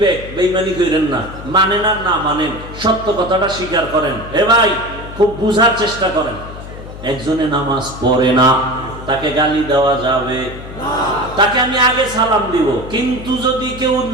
বেঈমানি করেন না, মানেন আর না মানেন, সত্য কথাটা স্বীকার করেন। এ ভাই খুব বুঝার চেষ্টা করেন। একজনে নামাজ পড়ে না, তাকে গালি দেওয়া যাবে না, তাকে আমি আগে সালাম দিব, কিন্তু যদি কেউ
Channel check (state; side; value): noise; left; hum, 13 dB below the sound